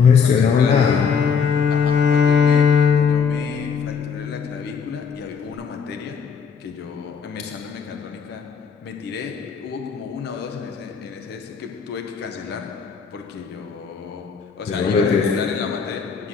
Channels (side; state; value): right; quieter; 6.2 dB